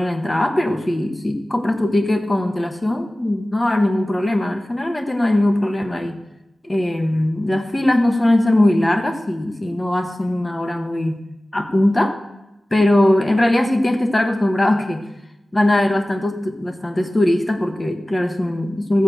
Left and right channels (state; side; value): normal; both; correlation 0.97